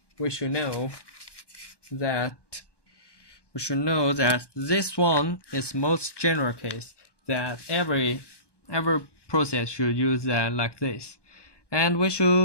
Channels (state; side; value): late; right; 1.1 ms